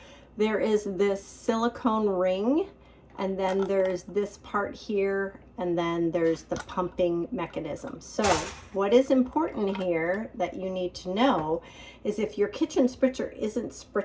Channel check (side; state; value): both; identical; correlation 1.00